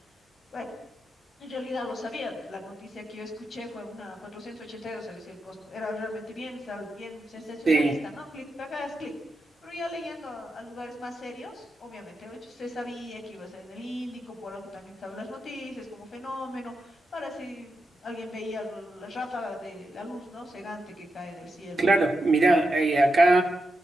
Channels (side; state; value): both; normal; correlation 0.87